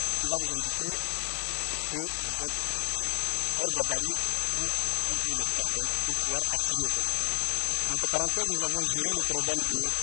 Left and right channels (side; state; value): right; silent; 58 dB below the other